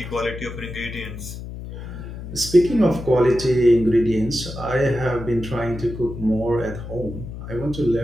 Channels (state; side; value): noise; left; hum, 10 dB below the sound